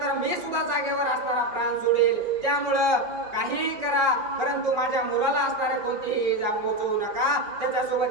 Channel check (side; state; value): left; late; 5.3 ms